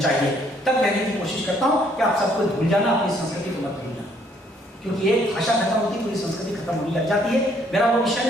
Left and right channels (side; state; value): both; normal; correlation 0.65